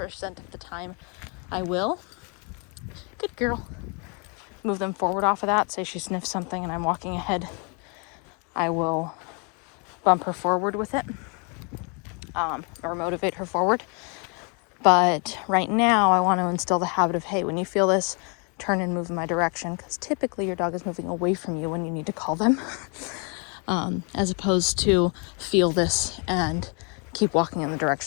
of the time, I will. Good girl. Move them forward off of that. Say she sniffs something and I'm walking ahead. I will bump her forward with it, or motivate her forward. But right now, I want to instill the habit of, hey, when you feel this, turn and move in my direction, because typically your dog is moving away from you when you need to call them, as opposed to feel this and keep walking in the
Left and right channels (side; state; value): right; quieter; 36.2 dB